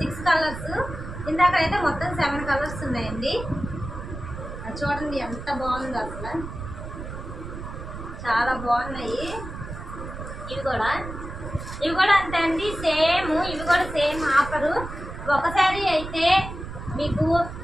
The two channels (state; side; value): noise; right; rumble, 9 dB below the sound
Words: కలర్స్. ఇందాక అయితే మొత్తం 7 కలర్స్ ఉన్నాయండి. చూడండి ఎంత బాగుందో అసలు, చాలా బాగున్నాయి. ఇవి కూడా అంతే అండి. ఇవి కూడా సేమ్ ఆఫరు. ఒక శారీ అయితే మీకు